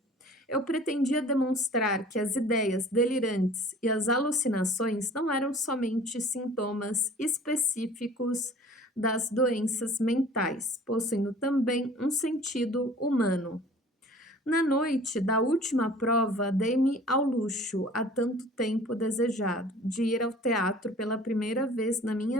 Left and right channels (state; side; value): normal; both; correlation 0.47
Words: Eu pretendia demonstrar que as ideias delirantes e as alucinações não eram somente sintomas específicos das doenças mentais, possuindo também um sentido humano. Na noite da última prova, dei-me ao luxo, há tanto tempo desejado, de ir ao teatro pela primeira vez na